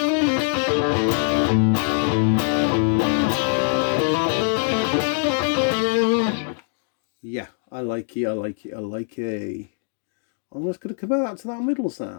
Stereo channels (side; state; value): right; silent; digital silence